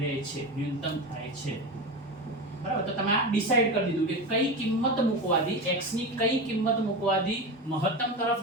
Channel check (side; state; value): both; normal; correlation 0.22